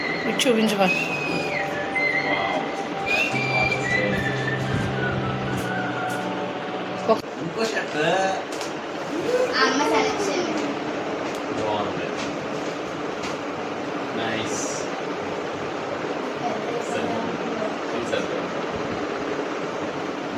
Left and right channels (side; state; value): both; identical; correlation 1.00